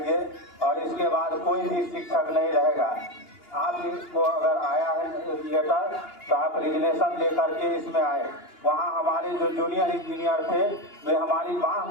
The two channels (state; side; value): late; right; 2.9 ms